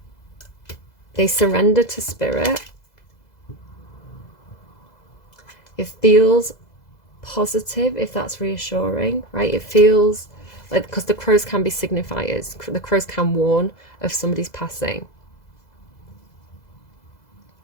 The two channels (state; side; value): late; right; 2.0 ms